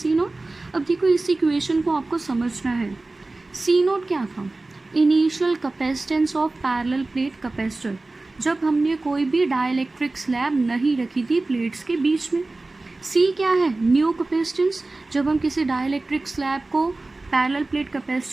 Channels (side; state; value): left; quieter; 3.2 dB